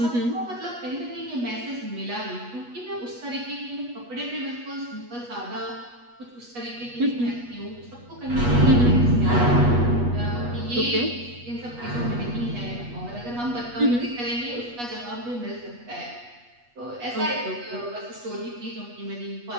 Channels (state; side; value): late; left; 8.3 ms